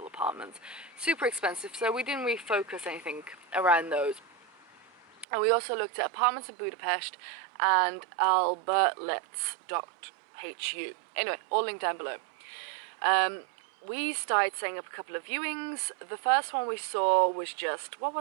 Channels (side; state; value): left; drops out; at 5.2 s